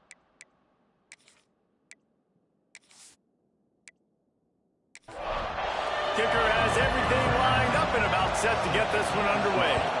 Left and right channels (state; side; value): identical; both; correlation 1.00